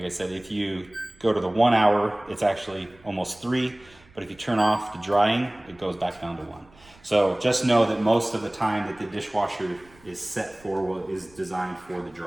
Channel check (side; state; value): right; noise; rumble, 27 dB below the sound